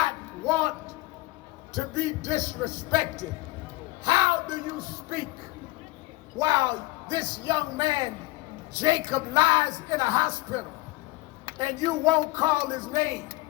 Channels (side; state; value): right; quieter; 20.1 dB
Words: want to be disrespected. How do you speak while this young man, Jacob, lies in a hospital and you won't call his name?